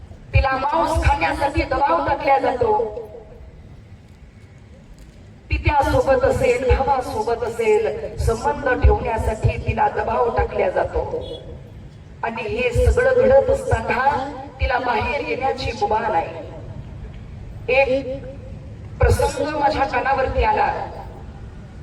तिला मांस खाण्यासाठी दबाव टाकला जातो. पित्यासोबत असेल, भावासोबत असेल, संबंध ठेवण्यासाठी तिला दबाव टाकला जातो. आणि हे सगळं घडत असताना तिला बाहेर येण्याची मुभा नाही. एक प्रसंग माझ्या कानावरती आला.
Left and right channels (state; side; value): identical; both; correlation 1.00